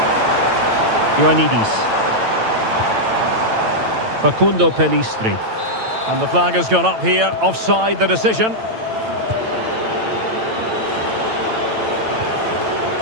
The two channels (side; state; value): left; late; 9.0 ms